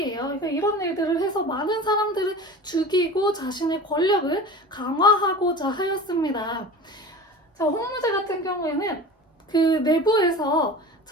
그러니까 이런 일들을 해서 많은 사람들을 죽이고 자신의 권력을 강화하고자 하였습니다. 자, 홍무제 같은 경우에는 그 내부에서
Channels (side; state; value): both; normal; correlation 0.36